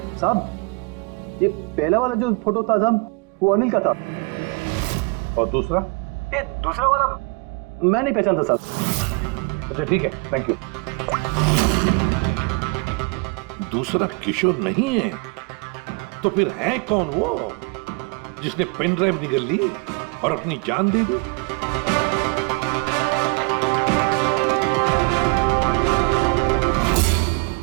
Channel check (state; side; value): quieter; left; 29.9 dB